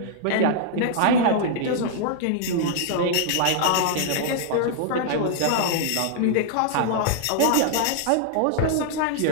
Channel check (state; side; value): different; both; correlation -0.01